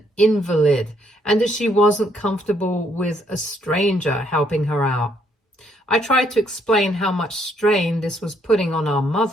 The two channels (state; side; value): normal; both; correlation 0.70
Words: invalid and that she wasn't comfortable with a stranger helping her out. I tried to explain how much strain this was putting on our